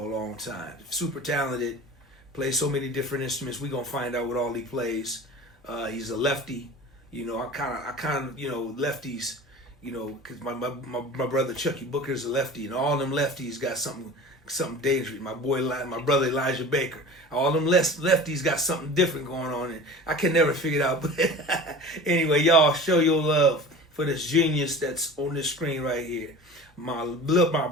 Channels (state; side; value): normal; both; correlation 0.37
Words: a long time. Super talented, plays so many different instruments. We gonna find out what all he plays. He's a lefty, you know. I kind of, you know, lefties, you know, because my brother Chucky Booker's a lefty, and all them lefties got something dangerous. My brother Elijah Baker, all them lefties got something different going on, and I can never figure it out. But anyway, y'all show your love for this genius that's on this screen right here. My little